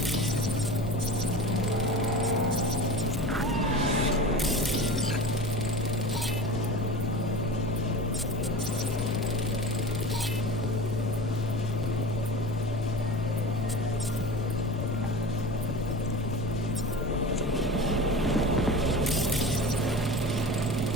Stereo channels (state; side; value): normal; both; correlation 0.32